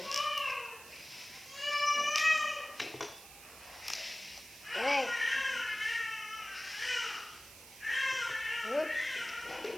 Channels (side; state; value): right; noise; hiss, 17 dB below the sound